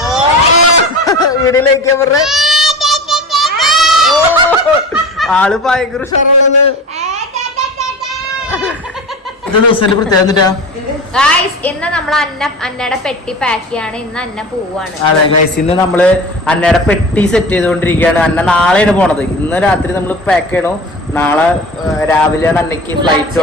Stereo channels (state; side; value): normal; both; correlation 0.33